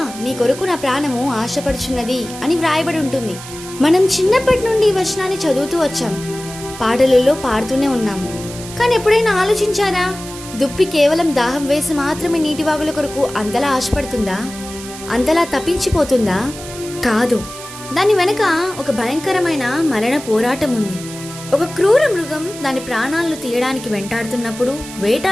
నీ కొరకు నా ప్రాణము ఆశపడుచున్నది అని వ్రాయబడి ఉంటుంది. మనం చిన్నప్పటి నుండి ఈ వచనాన్ని చదువుతూ వచ్చాం, పాటలలో పాడుతూనే ఉన్నాం. కానీ ఎప్పుడైనా ఆలోచించారా, దుప్పి కేవలం దాహం వేసి మాత్రమే నీటి వాగుల కొరకు అంతలా ఆశపడుతుందా? అంతలా తప్పించిపోతుందా? కాదు. దాని వెనక ఒక భయంకరమైన మరణ పోరాటం ఉంది. ఒక క్రూర మృగం దాని ప్రాణాలను తీయడానికి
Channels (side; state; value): right; noise; hiss, 13 dB below the sound